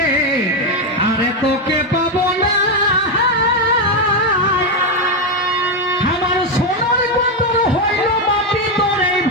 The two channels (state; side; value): normal; both; correlation 0.07